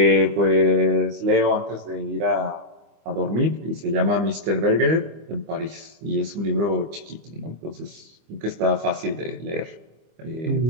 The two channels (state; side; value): late; left; 25 ms